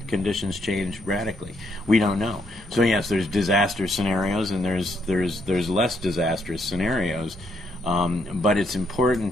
conditions change radically? We don't know. So yes, there's disaster scenarios and there's less disastrous scenarios, but it's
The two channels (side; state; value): both; normal; correlation 0.74